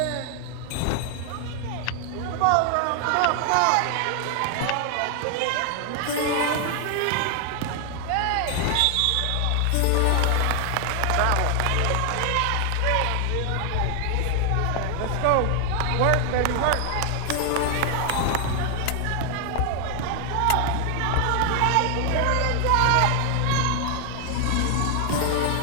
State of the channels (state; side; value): different; both; correlation 0.00